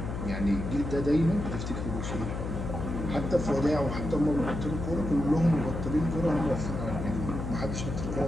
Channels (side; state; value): left; noise; hum, 5 dB below the sound